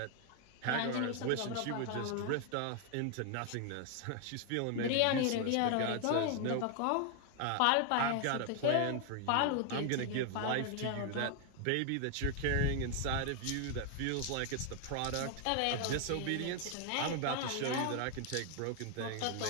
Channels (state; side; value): different; both; correlation 0.00